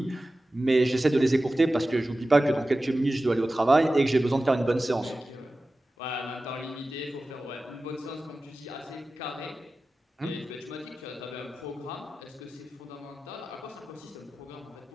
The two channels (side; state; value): both; normal; correlation 0.95